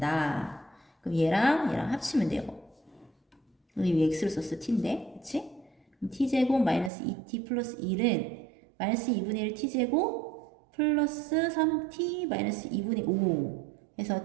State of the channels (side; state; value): left; drops out; at 6.9 s